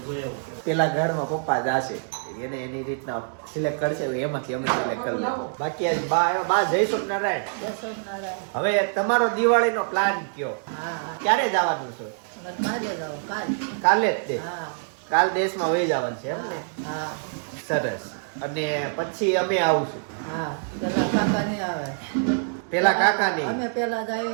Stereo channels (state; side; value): silent; left; digital silence